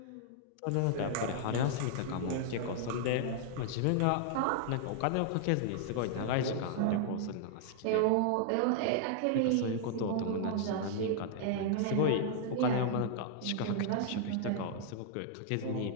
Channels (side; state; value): both; different; correlation -0.01